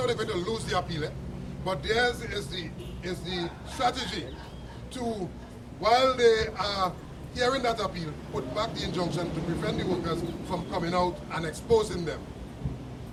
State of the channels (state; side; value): identical; both; correlation 1.00